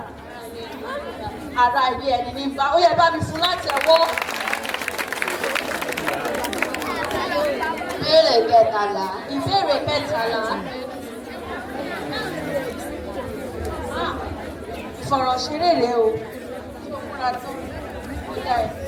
Ara ilé ẹni ní bá. Ó yẹ bá mi fún látẹ̀wọ́. Ìbéèrè kẹtàlá. Ìbéèrè kẹtàlá. Ìfọ̀rọ̀ṣeré rèé o. Ṣé o múra tó? Ìyá ẹ̀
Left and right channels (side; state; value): both; identical; correlation 1.00